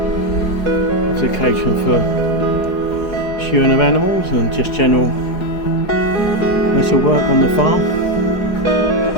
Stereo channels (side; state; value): right; late; 4.8 ms